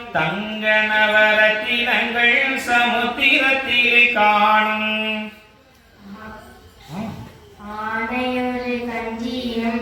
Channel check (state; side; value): identical; both; correlation 1.00